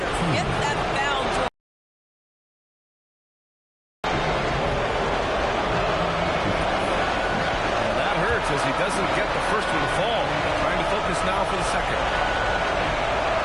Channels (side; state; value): both; identical; correlation 1.00